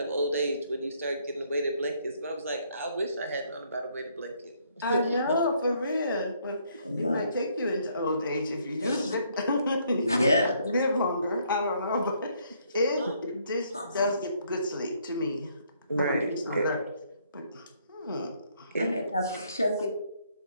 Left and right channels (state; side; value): inverted; both; correlation -0.68